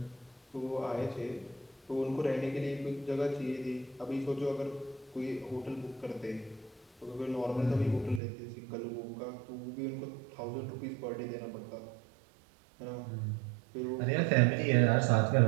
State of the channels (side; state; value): left; drops out; at 8.2 s